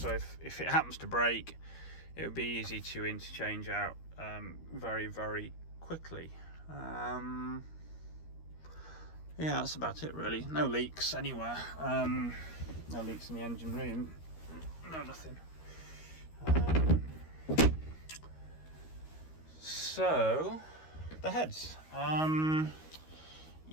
if it happens to break, it would be easy to interchange out very quickly. Yeah, that's about it really. No leaks anywhere. No leaks in the engine room. No, nothing. So the heads.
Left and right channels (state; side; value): late; right; 13 ms